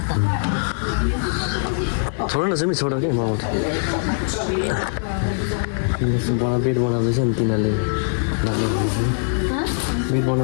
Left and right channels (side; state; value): right; silent; digital silence